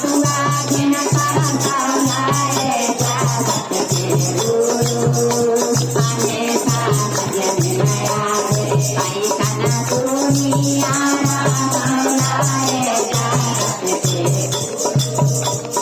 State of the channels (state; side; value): identical; both; correlation 1.00